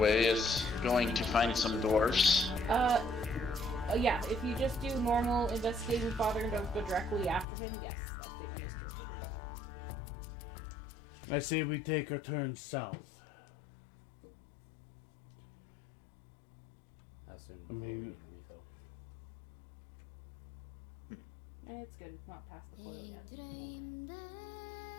as going to find some dwarfs. Yeah, if you just do normal investigating father and don't go directly after him, yes, that statement is true. I say we take our turn south. How soon? I mean- before we need a refill? It's good, it's not past the coil yet.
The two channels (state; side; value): drops out; right; at 7.5 s